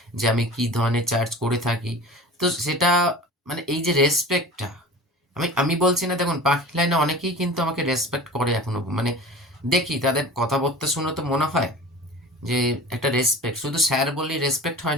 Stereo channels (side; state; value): both; normal; correlation 0.38